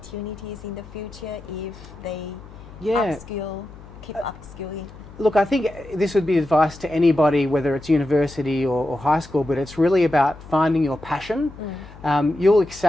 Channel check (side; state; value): left; noise; hum, 18 dB below the sound